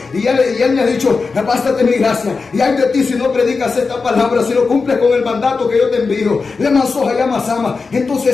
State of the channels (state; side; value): quieter; right; 4.5 dB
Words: Y él me ha dicho: bástate mi gracia. Y hay de ti si no predicas esta palabra, si no cumples con el mandato que yo te envío. Le mansoja llama sama.